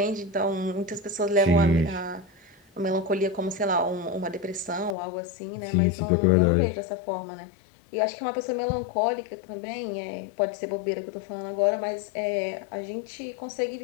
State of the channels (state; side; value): drops out; right; at 5.0 s